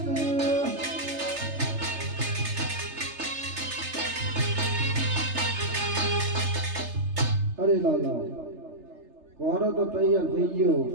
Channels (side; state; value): left; late; 3.3 ms